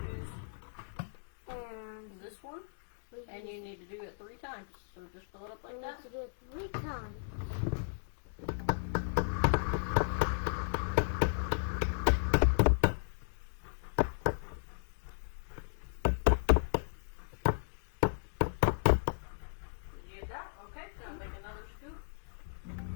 this one, and you need to do it 3 times. So just fill it up like We that. need to do it 3 times. it out. Okay, now make another scoop.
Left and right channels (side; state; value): right; silent; digital silence